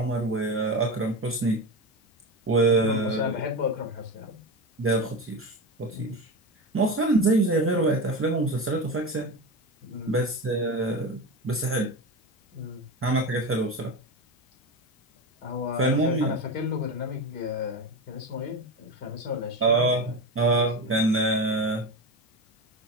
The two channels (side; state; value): both; normal; correlation 0.22